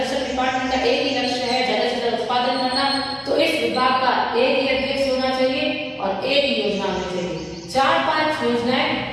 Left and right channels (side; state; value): both; identical; correlation 1.00